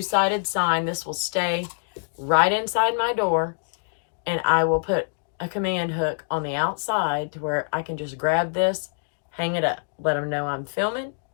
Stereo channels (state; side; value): silent; right; digital silence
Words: sign. This will stay right inside my door. And I will put a command hook on the outside to where I can just grab this, hang it up, let them know I'm filming.